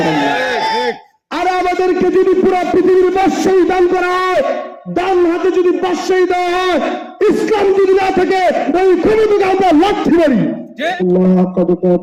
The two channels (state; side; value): identical; both; correlation 1.00